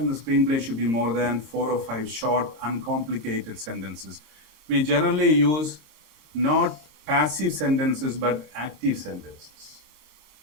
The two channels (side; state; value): left; late; 26 ms